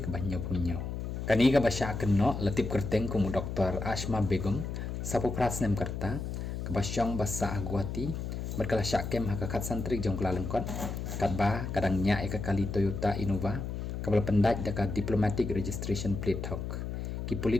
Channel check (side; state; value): left; noise; hum, 5 dB below the sound